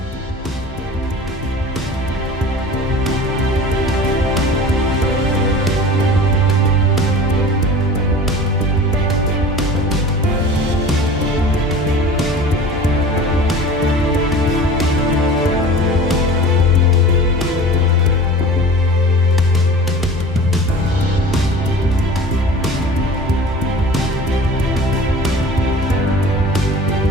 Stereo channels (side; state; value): both; normal; correlation 0.40